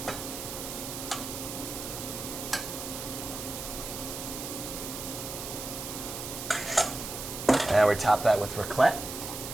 And we top that with raclette,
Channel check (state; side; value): noise; right; hiss, 7 dB below the sound